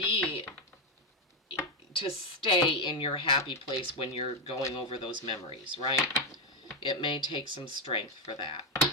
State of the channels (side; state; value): both; normal; correlation 0.05